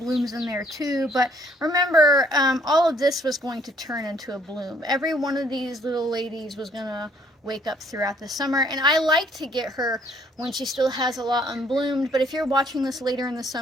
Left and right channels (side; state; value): both; normal; correlation 0.64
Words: in there too, but remember, all of this was going to turn into a bloom. Every one of these little ladies was going to wake up throughout the summer. And I like to get her when she still has a lot unbloomed, but if you're watching this later in the